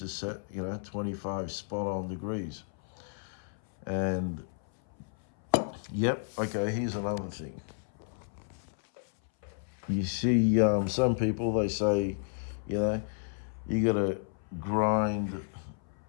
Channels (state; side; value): silent; right; 56 dB below the other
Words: is set, you know, 25 spot on degrees. And, yep, okay, here's another thing. You see, some people, they say, you know, you gotta grind,